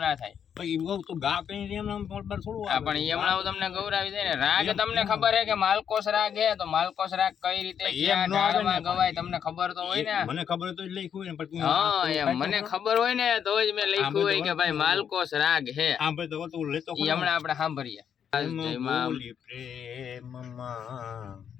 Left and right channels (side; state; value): right; quieter; 8.2 dB